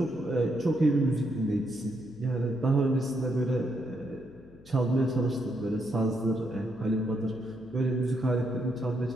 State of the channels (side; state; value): left; noise; hum, 24 dB below the sound